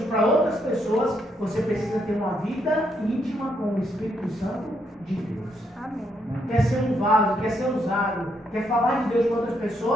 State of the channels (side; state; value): both; normal; correlation 0.76